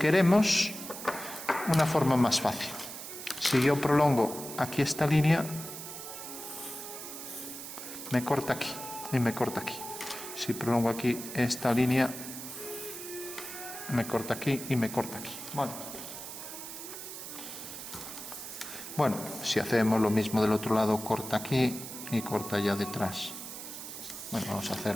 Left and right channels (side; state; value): right; noise; hiss, 10 dB below the sound